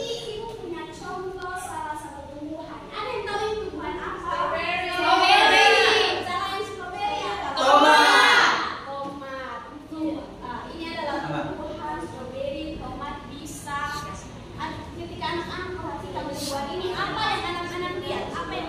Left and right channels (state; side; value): identical; both; correlation 1.00